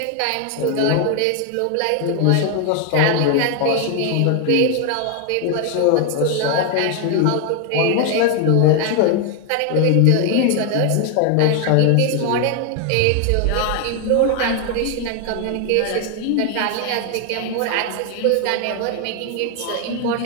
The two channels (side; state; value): both; different; correlation 0.01